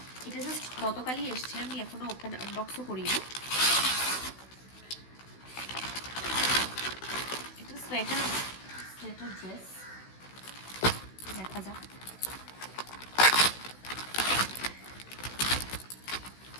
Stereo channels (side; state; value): right; late; 16 ms